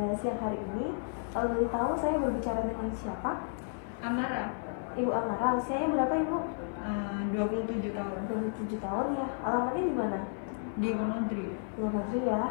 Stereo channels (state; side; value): silent; right; 56 dB below the other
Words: siang hari ini. Kalau boleh tahu, saya berbicara dengan siapa? Amara, Ibu Amara. Usianya berapa, Ibu? 27 tahun, 27 tahun ya. Alamatnya di mana? di Wonodri. Luar negeri ya.